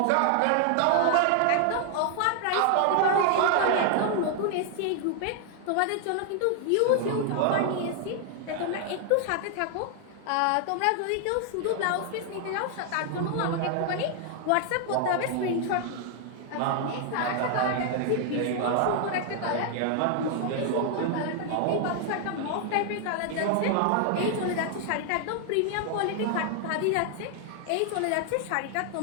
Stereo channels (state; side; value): different; both; correlation 0.00